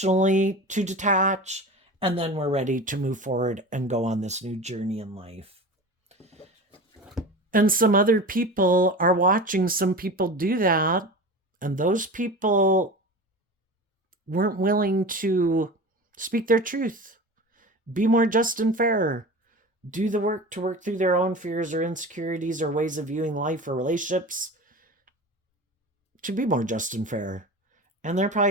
to detach, and then we're ready to move forward and go on this new journey in life. And some other people are watching some people do that, And those people weren't willing to speak their truth, be more just and fair, do the work to work through their own fears or insecurities or ways of viewing life or relationships to be more just and fair. And they're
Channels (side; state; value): both; normal; correlation 0.33